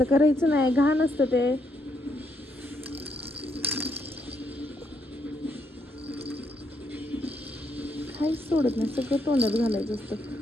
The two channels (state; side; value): normal; both; correlation 0.76